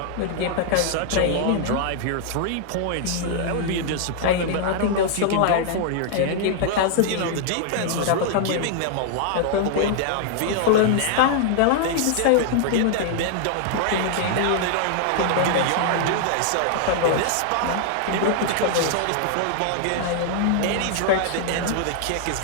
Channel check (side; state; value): both; different; correlation 0.00